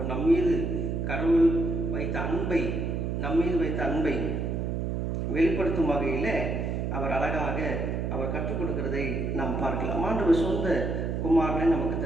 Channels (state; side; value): noise; right; hum, 1 dB below the sound